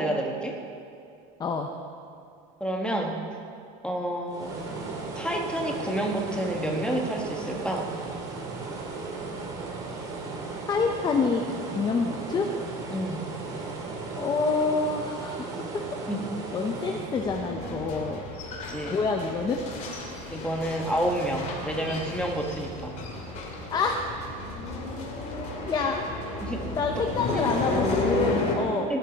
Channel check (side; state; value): both; normal; correlation 0.46